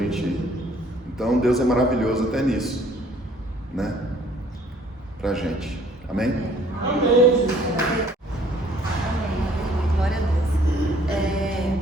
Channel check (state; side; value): normal; both; correlation 0.59